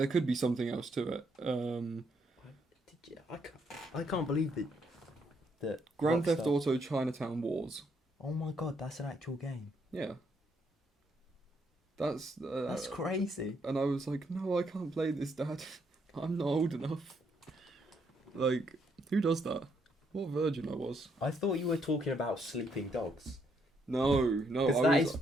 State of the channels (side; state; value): both; normal; correlation 0.74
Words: could be something else to it. I can't believe that Grand Theft Auto Chinatown Wars. Oh my god, that's an actual game. Yeah. That's crazy. And I was like, no, I can't play this, Dad. I'm not old enough. Like, who does that? What virgin I was. I thought you were talking about sleeping dogs. No. Because